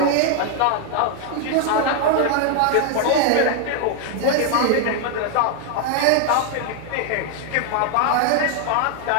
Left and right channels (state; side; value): different; both; correlation 0.00